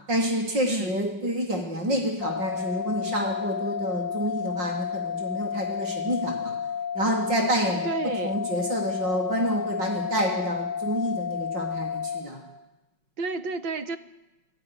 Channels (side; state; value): left; late; 5.4 ms